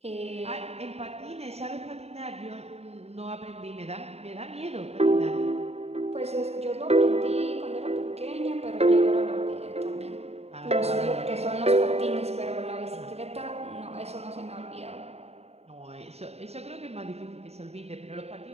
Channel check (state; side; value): late; left; 0.30 ms